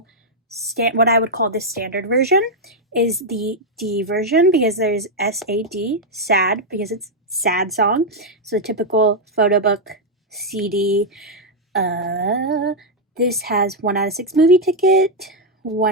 what I would call the standard version is the D version, because there's SAD, sad, because it's sad song. So the typical photo book CD. This has 1 out of 6 movie ticket,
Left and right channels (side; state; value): both; normal; correlation -0.01